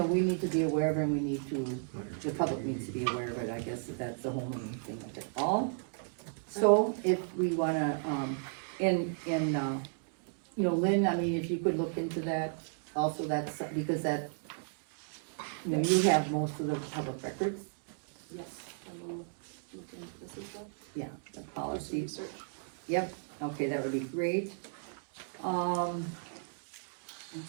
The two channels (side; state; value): left; silent; digital silence